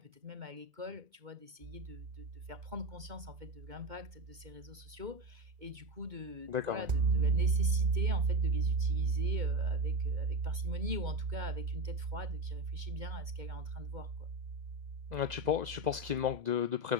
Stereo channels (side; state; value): left; late; 2.2 ms